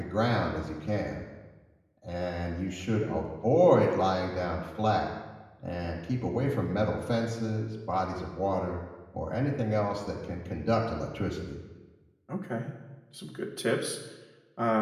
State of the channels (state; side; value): identical; both; correlation 1.00